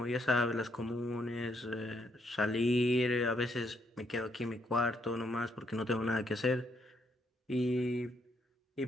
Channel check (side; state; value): both; normal; correlation 0.74